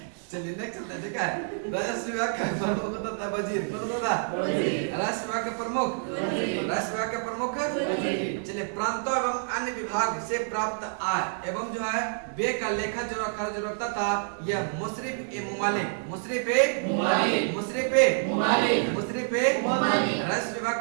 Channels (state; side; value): silent; left; digital silence